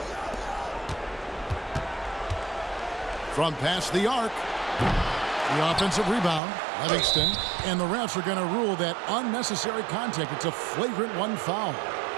From past the arc. The offensive rebound, Livingston, and the refs are going to rule that unnecessary contact. It's a flagrant 1 foul.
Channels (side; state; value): left; drops out; at 6.4 s